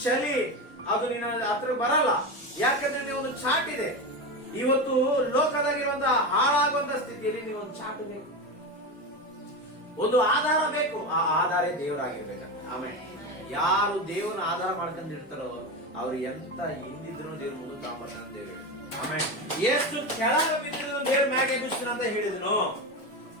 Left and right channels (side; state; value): both; normal; correlation 0.19